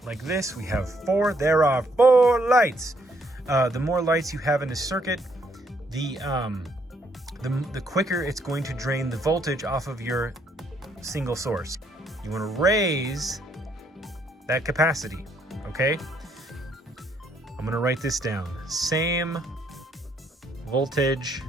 like this, we have 4, there are 4 lights. The more lights you have in a circuit, the quicker it's going to drain the voltage off of your single source. You want to raise that capacity, okay? I'm gonna write this down. Same voltage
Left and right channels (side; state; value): both; normal; correlation 0.71